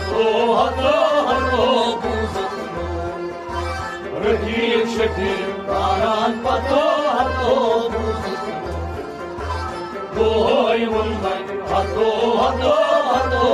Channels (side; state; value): both; identical; correlation 1.00